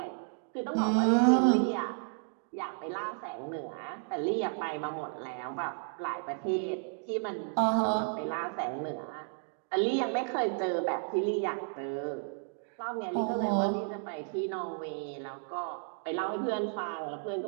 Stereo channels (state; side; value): silent; left; 56 dB below the other